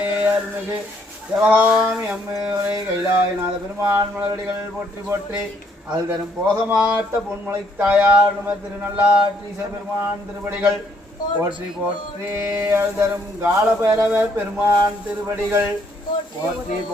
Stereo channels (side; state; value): both; normal; correlation 0.69